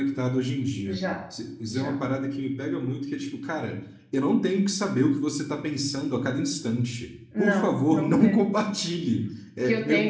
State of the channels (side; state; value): both; identical; correlation 1.00